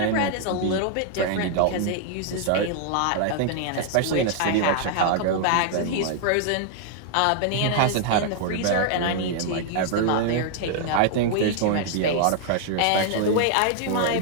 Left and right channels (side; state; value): both; different; correlation 0.00